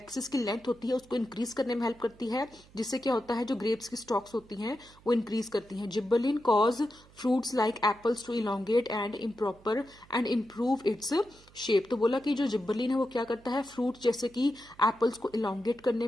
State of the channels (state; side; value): noise; right; hum, 26 dB below the sound